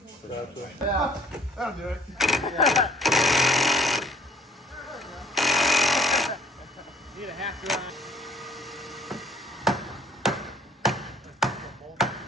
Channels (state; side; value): normal; both; correlation 0.58